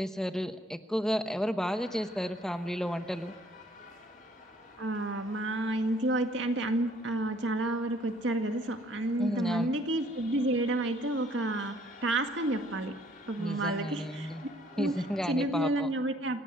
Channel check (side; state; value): both; normal; correlation 0.62